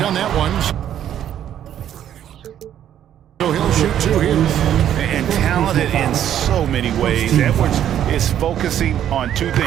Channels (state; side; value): quieter; left; 10.6 dB